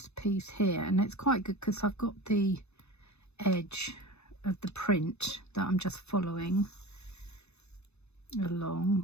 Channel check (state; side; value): late; right; 0.81 ms